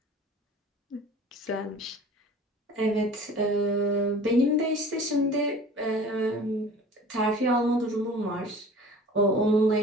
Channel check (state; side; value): normal; both; correlation 0.44